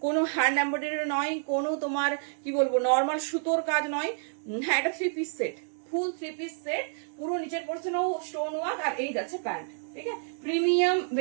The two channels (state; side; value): silent; left; digital silence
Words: কোনো হ্যান্ড এমব্রয়ডারি নয়, কোনো তোমার কি বলবো নর্মাল সুতোর কাজ নয়। হ্যাঁ, এটা 3 পিস সেট, ফুল 3 পিস সেট, পুরো নিচের পোর্শনেও স্টোন ওয়ার্ক। আর এই যাচ্ছে প্যান্ট, ঠিক আছে, প্রিমিয়াম